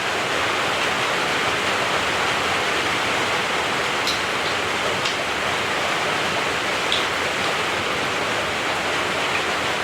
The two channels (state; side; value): identical; both; correlation 1.00